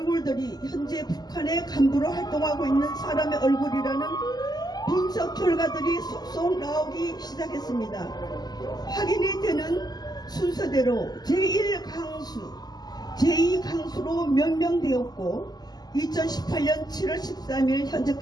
현재 북한의 간부로 활동하고 있는 사람의 얼굴이라는 분석 결과들이 속속 나오기 시작했습니다. 확인이 되는 순서대로 제1강수, 제2강수로 명명되었고 2018년 7월 13일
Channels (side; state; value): right; late; 0.20 ms